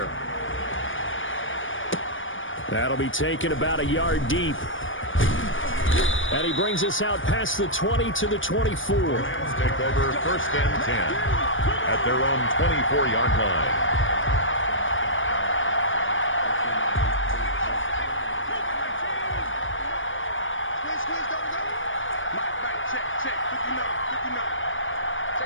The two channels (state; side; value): late; right; 0.57 ms